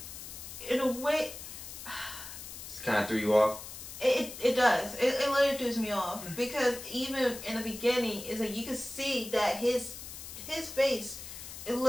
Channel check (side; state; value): left; noise; hiss, 11 dB below the sound